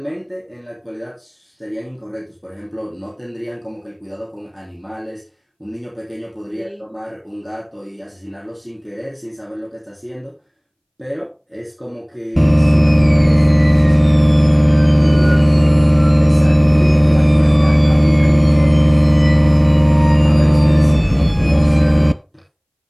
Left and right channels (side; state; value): both; identical; correlation 1.00